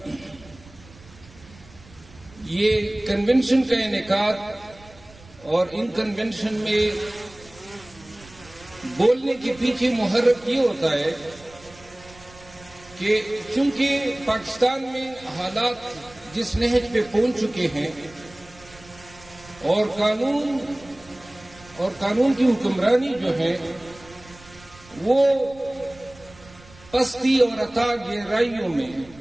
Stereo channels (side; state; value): right; noise; rumble, 23 dB below the sound